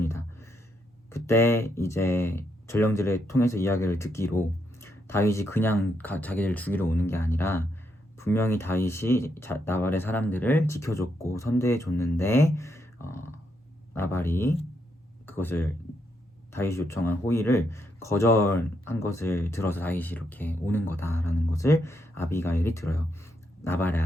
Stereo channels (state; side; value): normal; both; correlation 0.79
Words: 그때 이제 전령들을 통해서 이야기를 듣기로 다윗이 그냥 자기를 죽이러 오는 게 아니라 분명히 다윗이 나발의 사람들을 지켜줬고 선대해줬는데 나발이 그것을 다윗이 요청한 호의를 거절한 것을 들어서 다윗이 이렇게 오는 거다라는 것을 아비가일이 들어요. 나발의